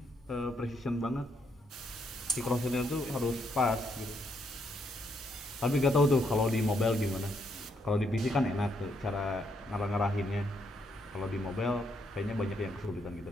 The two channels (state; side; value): normal; both; correlation 0.75